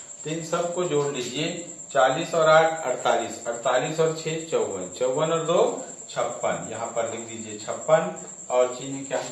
तो इन सब को जोड़ लीजिए, 40 और 8 48, 48 और 6 54, 54 और 2 56, यहाँ पर लिख दीजिए 56 और चिन्ह क्या हो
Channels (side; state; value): both; identical; correlation 1.00